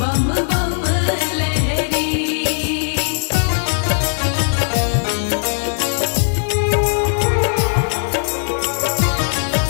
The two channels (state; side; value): silent; right; digital silence